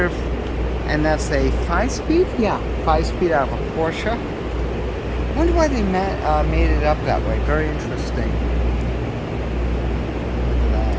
and that's a 5-speed? Yeah, 5-speed out of a Porsche. I wonder why they made it up that way. Very interesting. Look at that.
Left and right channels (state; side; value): identical; both; correlation 1.00